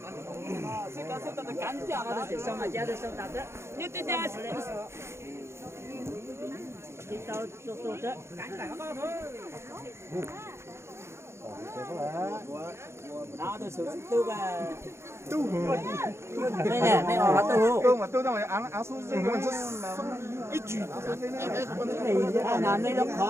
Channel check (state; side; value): late; left; 0.13 ms